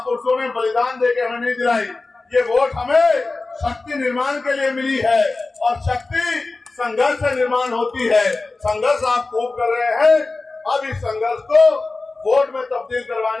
ने बलिदान देके हमें नहीं दिलाई। ये वोट हमें शक्ति निर्माण के लिए मिली है और शक्ति संघर्ष से निर्माण होती है। संघर्ष आप खूब कर रहे हैं, अब इस संघर्ष को वोट में तब्दील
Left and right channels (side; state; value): right; quieter; 3.5 dB